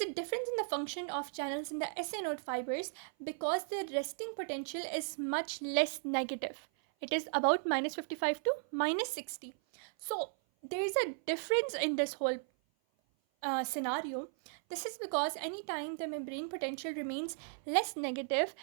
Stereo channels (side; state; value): left; silent; 54 dB below the other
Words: difference in the function of channels in the SA node fibers because the resting potential is much less negative. It is about minus 55 to minus 60. So there is a difference in this whole scenario. This is because anytime the membrane potential remains less negative